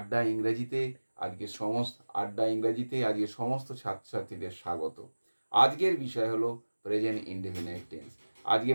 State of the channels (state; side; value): inverted; both; correlation -1.00